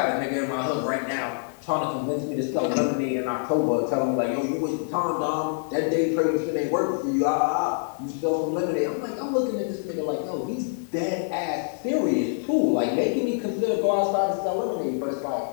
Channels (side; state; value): right; silent; 61 dB below the other